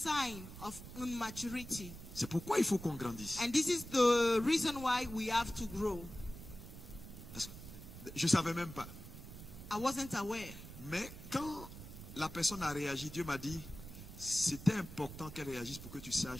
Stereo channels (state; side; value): noise; right; rumble, 13 dB below the sound